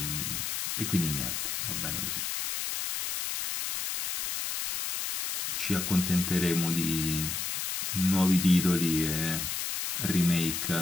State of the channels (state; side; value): noise; left; hiss, 2 dB below the sound